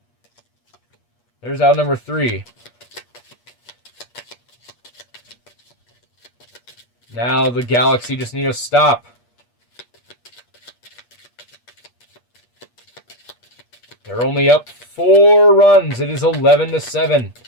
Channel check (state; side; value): late; right; 8.4 ms